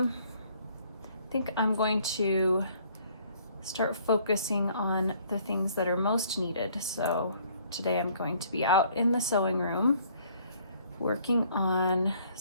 think I'm going to start focusing on the things that are most needed. So today I'm going to be out in the sewing room working on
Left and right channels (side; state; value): both; inverted; correlation -0.61